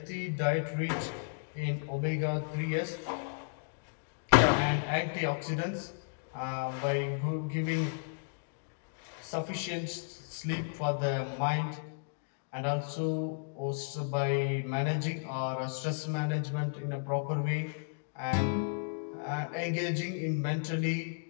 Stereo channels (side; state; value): right; silent; digital silence